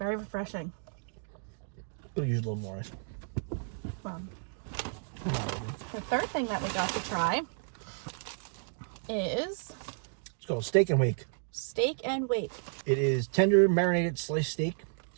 refreshing. Could use a little more ice. Well, the third thing that we got to try is It's called Steak and Wake. steak and wake. It is tender marinated sliced steak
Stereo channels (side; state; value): left; silent; digital silence